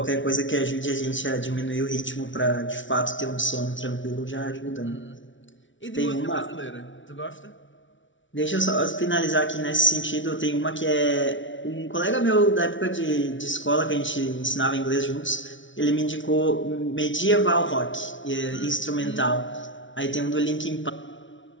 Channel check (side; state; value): right; late; 0.56 ms